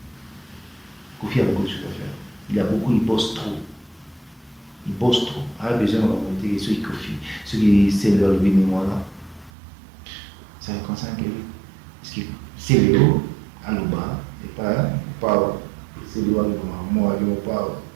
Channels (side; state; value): left; drops out; at 9.5 s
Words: Koffi a beaucoup de choses à faire. Il a beaucoup, il bosse trop. Il bosse trop. Il a besoin de remonter ceux qui Koffi, ceux qui c'est leur mémoire là. Ça fait comme ça que parce que c'est Léo à l'Oba et pas c'est Léo à l'Oba moi je pas